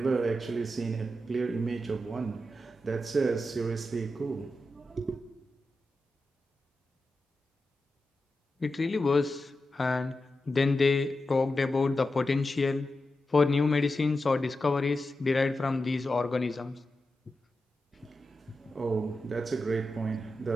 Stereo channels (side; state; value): both; normal; correlation 0.90